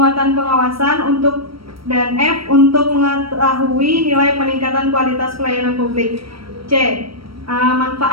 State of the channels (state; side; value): late; left; 0.75 ms